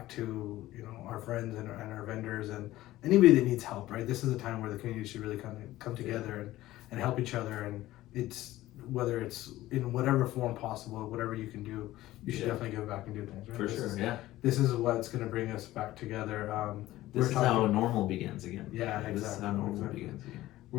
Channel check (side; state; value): right; quieter; 16.0 dB